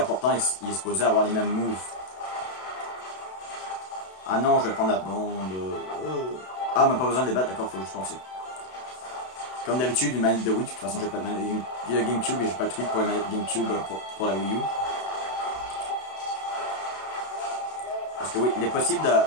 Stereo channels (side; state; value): right; late; 32 ms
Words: pourtant, il est supposé avoir les mêmes moves. Ah non, je vais prendre la blonde. Ah, mais pas besoin de les battre, d'accord, faut juste penser. Comme d'habitude, une manette de Wii, de toute façon, j'ai pas de manette de GameCube et j'ai pas de truc pour la manette GameCube pour la Wii U. Parce que oui, il est possible de...